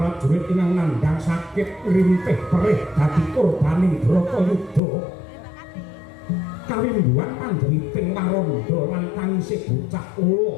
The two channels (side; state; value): right; drops out; at 4.8 s